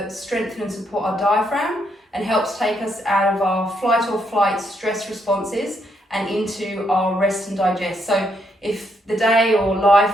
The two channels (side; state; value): both; normal; correlation 0.76